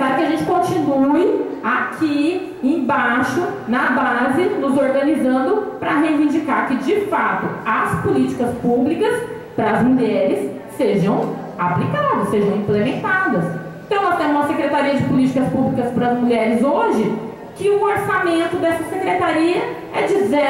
que a gente continue aqui embaixo, na base, nos organizando para reivindicar que, de fato, as políticas públicas para as mulheres sejam aplicadas, sejam implementadas. Então, nós temos uma Secretaria de Políticas Públicas para as Mulheres hoje, que o orçamento dessa secretaria é de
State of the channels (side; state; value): both; identical; correlation 1.00